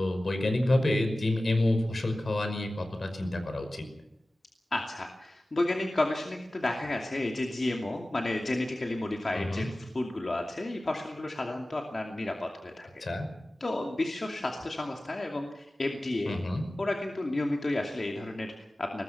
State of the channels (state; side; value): normal; both; correlation 0.96